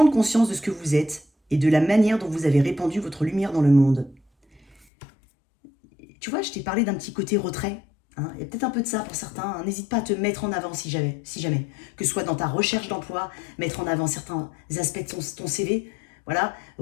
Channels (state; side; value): drops out; right; at 4.9 s